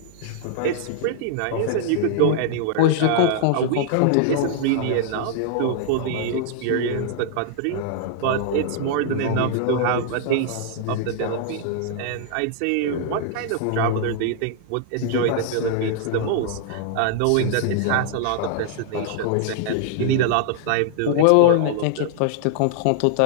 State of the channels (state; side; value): different; both; correlation -0.01